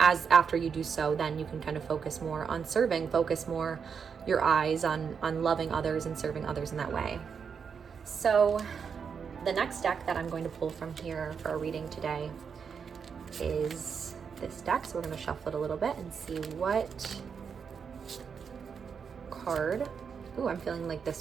after you do so, then you can kind of focus more on serving, focus more your eyes on loving others and serving others in that way. So the next deck that I'm going to pull from here for our reading today is this deck. So we're going to shuffle it a little bit and see what card. Ooh, I'm feeling like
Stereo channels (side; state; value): left; quieter; 6.4 dB